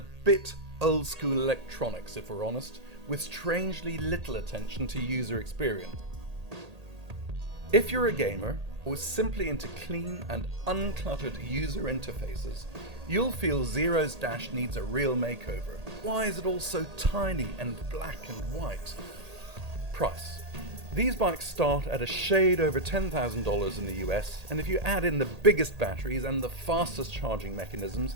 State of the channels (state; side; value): late; left; 1.8 ms